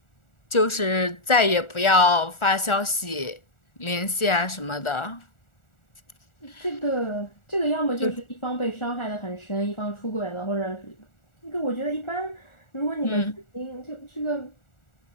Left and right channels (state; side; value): late; right; 1.4 ms